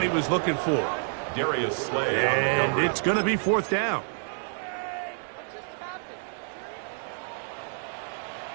he was looking for. Darius Slay. And it's going to be 4th down.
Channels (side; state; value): left; silent; 59 dB below the other